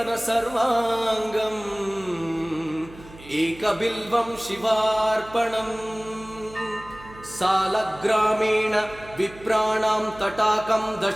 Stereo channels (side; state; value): right; noise; hum, 19 dB below the sound